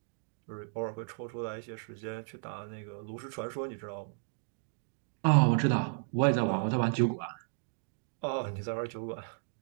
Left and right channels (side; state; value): left; silent; digital silence